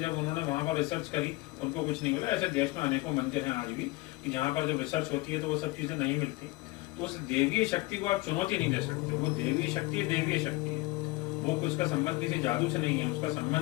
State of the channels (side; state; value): right; quieter; 21.8 dB